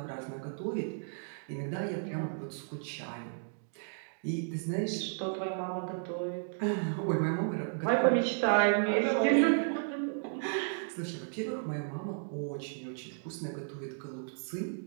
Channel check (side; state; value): left; silent; digital silence